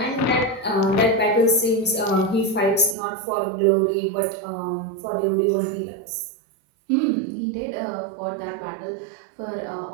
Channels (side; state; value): left; drops out; at 3.0 s